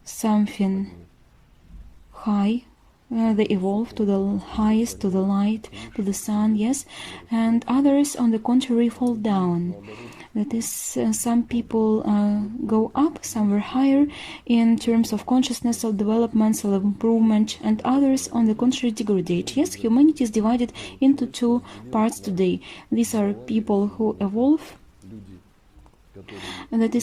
something high, they evolve to the highest, to the light, to the sun, yes, and others, on the contrary, fall down. That is, some people go up somewhere higher in terms of consciousness, of development, self-improvement, and others, on the contrary, degrade. Yes, humanity is divided into two parts today. These are people who evolve, and that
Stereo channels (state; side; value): identical; both; correlation 1.00